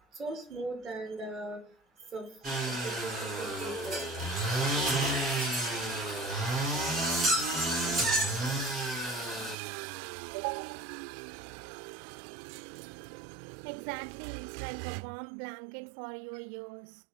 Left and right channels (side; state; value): left; drops out; at 9.6 s